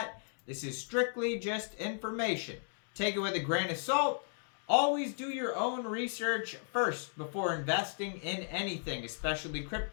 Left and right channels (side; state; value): right; silent; digital silence